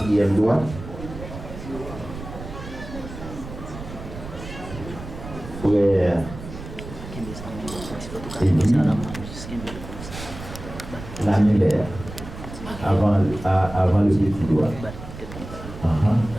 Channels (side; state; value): right; noise; rumble, 12 dB below the sound